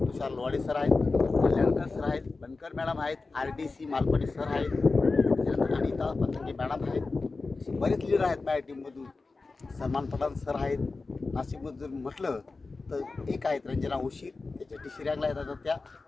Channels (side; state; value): right; quieter; 3.8 dB